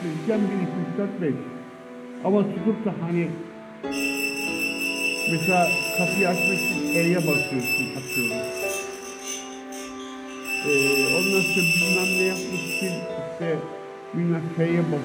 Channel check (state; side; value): identical; both; correlation 1.00